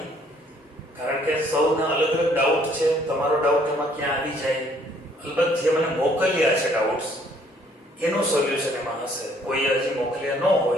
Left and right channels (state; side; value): normal; both; correlation 0.63